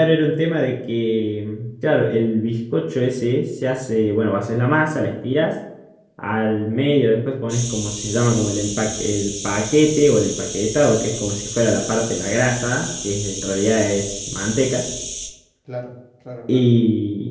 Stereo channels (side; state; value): both; identical; correlation 1.00